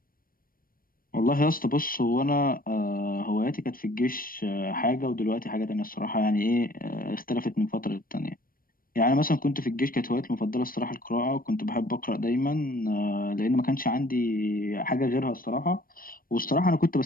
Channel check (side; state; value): right; late; 0.41 ms